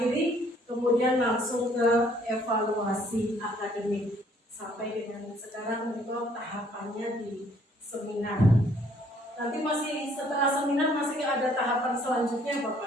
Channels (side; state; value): both; normal; correlation 0.62